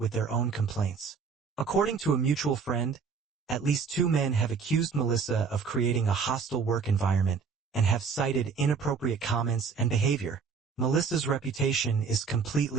their own complaints. According to a mutual friend, at least 2 men have accused Melissa of creating a hostile work environment and have cited inappropriate comments and behavior. Melissa's reputation is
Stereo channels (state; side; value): quieter; left; 5.7 dB